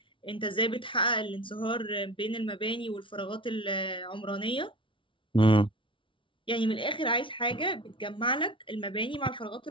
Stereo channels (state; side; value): late; right; 0.25 ms